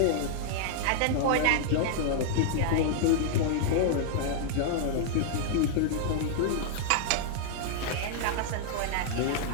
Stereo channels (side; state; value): both; different; correlation -0.01